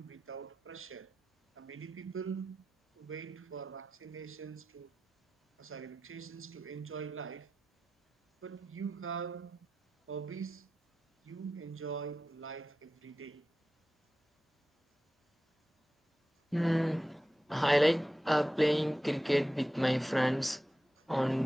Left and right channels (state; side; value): normal; both; correlation 0.92